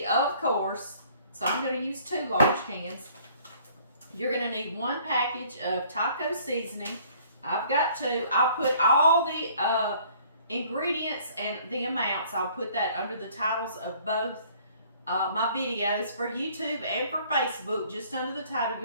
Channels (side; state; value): both; inverted; correlation -0.57